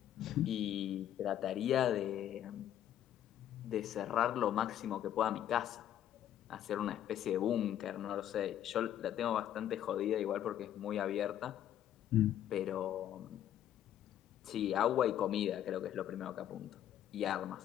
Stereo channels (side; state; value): right; quieter; 11.1 dB